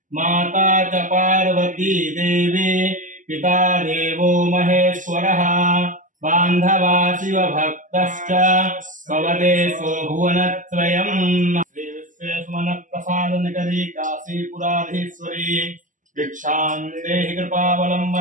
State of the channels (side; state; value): left; late; 0.37 ms